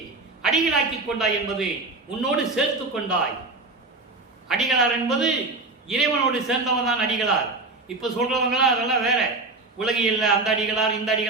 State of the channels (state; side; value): quieter; left; 3.3 dB